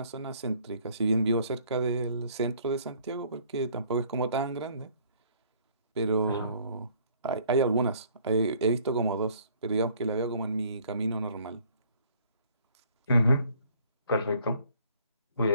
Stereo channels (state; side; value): inverted; both; correlation -0.59